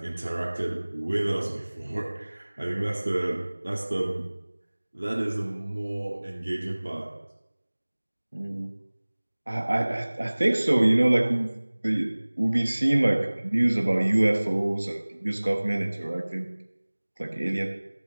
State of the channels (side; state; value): both; inverted; correlation -1.00